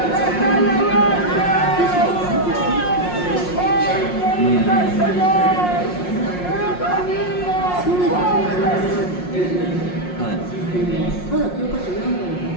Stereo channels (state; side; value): late; right; 5.6 ms